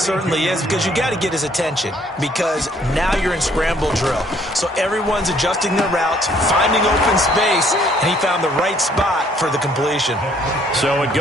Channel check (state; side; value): normal; both; correlation 0.63